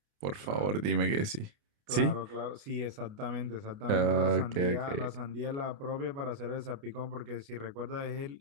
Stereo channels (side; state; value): left; late; 29 ms